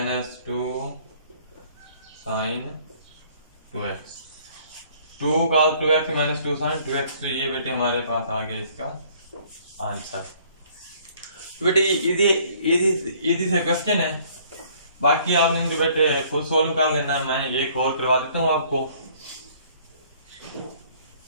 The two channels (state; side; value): inverted; both; correlation -0.59